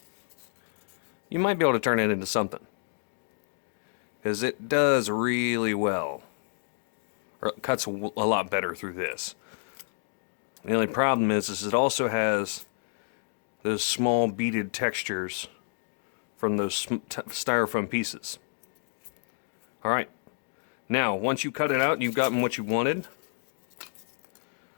you might be able to turn it into something. Because it does really well. Or it cuts a lot better through this. The only problem is it also has those small beaded textures from those styrofoam pieces. Alright, now once you cut it out and you've gotten what you wanted,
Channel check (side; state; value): right; silent; digital silence